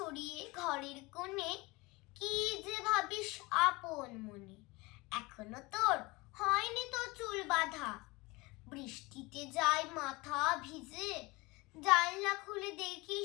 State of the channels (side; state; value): right; quieter; 23.6 dB